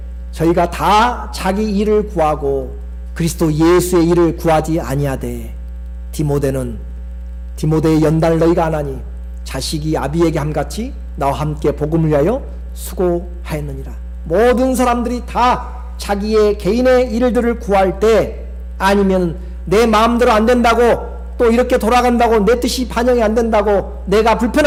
저희가 다 자기 일을 구하고 그리스도 예수의 일을 구하지 아니하되 디모데의 연단을 너희가 안 하니 자식이 아비에게 함같이 나와 함께 복음을 위하여 수고하였느니라. 모든 사람들이 다 자기의 개인의 일들을 구할 때 아니면 내 마음대로 안 된다고 또 이렇게 돌아간다고 내 뜻이 반영이 안 된다고 내가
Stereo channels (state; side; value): identical; both; correlation 1.00